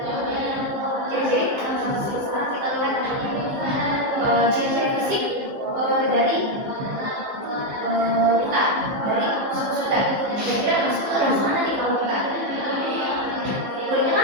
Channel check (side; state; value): left; late; 15 ms